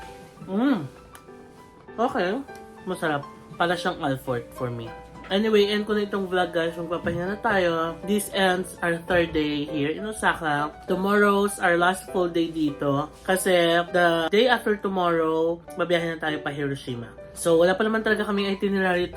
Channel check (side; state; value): both; identical; correlation 1.00